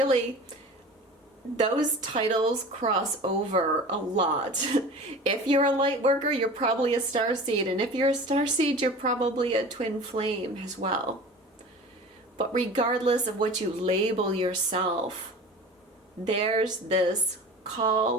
those titles cross over a lot. If you're a light worker, you're probably a star seed, and if you're a star seed, you're probably a twin flame as well. But regardless of what you label yourself, there's this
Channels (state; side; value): normal; both; correlation 0.38